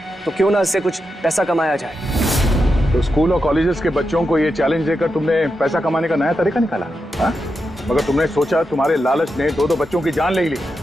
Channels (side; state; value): both; normal; correlation 0.87